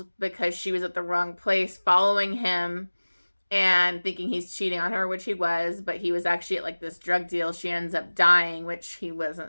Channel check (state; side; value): inverted; both; correlation -1.00